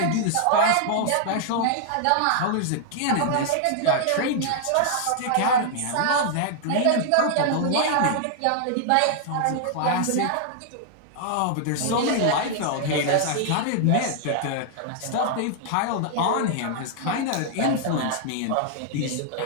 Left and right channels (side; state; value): both; different; correlation -0.01